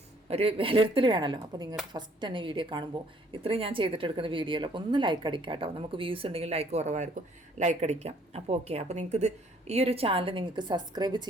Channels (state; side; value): normal; both; correlation 0.61